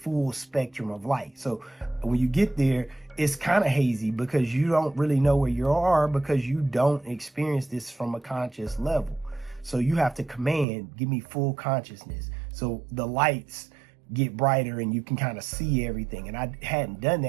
spectrum of light. So when you get there, it's kind of hazy because you don't really know where you are because you don't experience this from a conscious level. So you have to command, give me full consciousness. So the lights get brighter and you can kind of see everything. And I hadn't done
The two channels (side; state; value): left; drops out; at 10.7 s